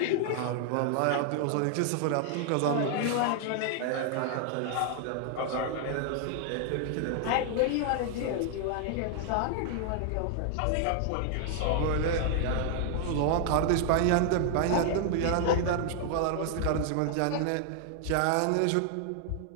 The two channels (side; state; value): both; different; correlation 0.00